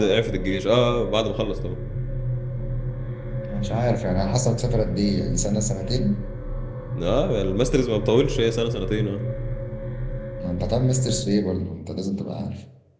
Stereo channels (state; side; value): identical; both; correlation 1.00